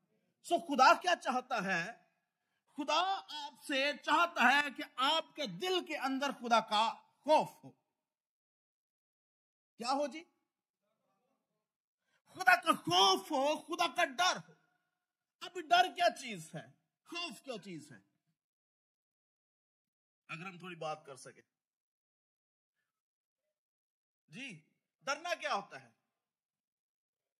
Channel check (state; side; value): identical; both; correlation 1.00